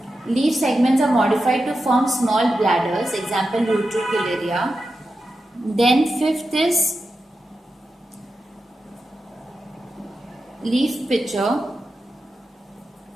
Leaf segments are modified to form small bladders, example Utricularia. Then fifth is leaf pitcher.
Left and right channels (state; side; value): normal; both; correlation 0.90